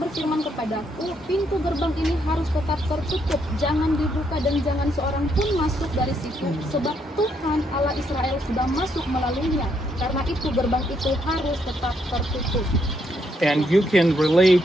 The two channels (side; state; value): both; normal; correlation 0.74